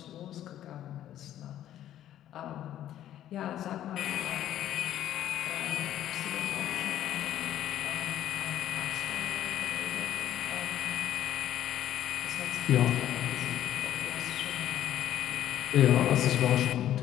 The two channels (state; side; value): quieter; right; 12.0 dB